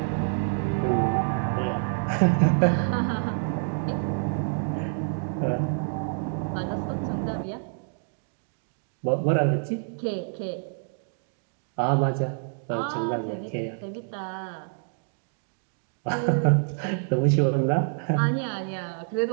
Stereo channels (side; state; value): left; silent; 60 dB below the other